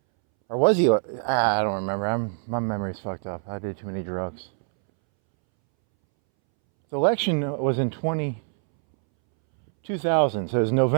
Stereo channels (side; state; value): left; silent; 62 dB below the other